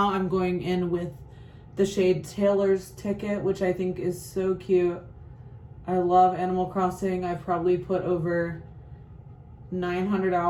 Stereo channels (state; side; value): identical; both; correlation 1.00